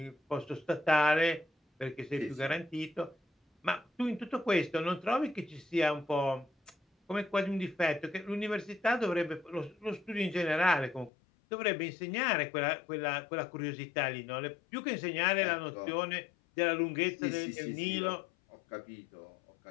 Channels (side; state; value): right; drops out; at 11.1 s